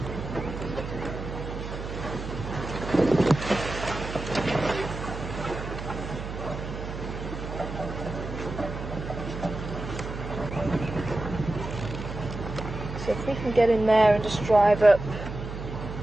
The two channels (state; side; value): noise; right; hum, 8 dB below the sound